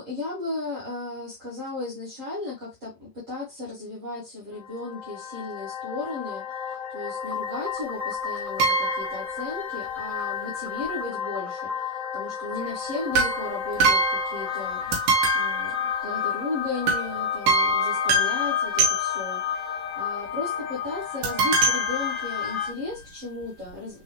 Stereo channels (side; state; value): left; late; 11 ms